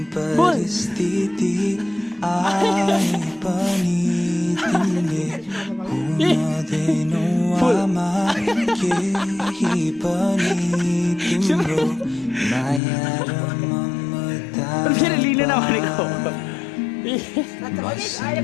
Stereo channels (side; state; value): right; drops out; at 12.8 s